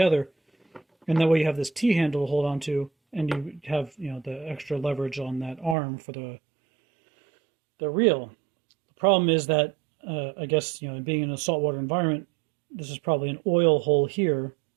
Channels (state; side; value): drops out; left; at 5.8 s